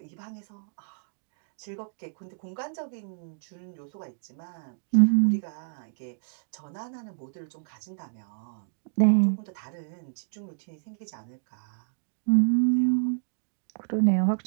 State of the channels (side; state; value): left; silent; digital silence